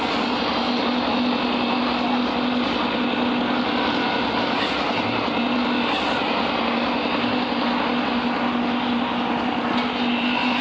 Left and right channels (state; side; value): identical; both; correlation 1.00